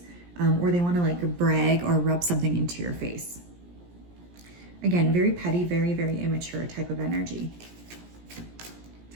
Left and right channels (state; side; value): late; left; 17 ms